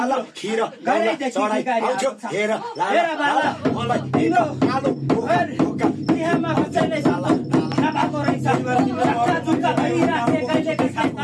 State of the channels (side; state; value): both; identical; correlation 1.00